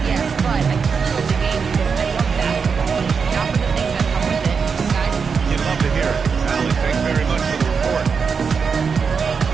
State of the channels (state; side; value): quieter; left; 5.8 dB